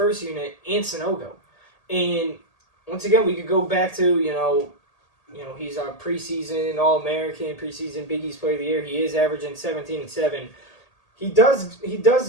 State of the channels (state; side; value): late; right; 1.8 ms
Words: unit and Sanogo. And once again, we could go back to, he's our preseason All-American, preseason Big East Player of the Year. He is averaging 17 and 7. He does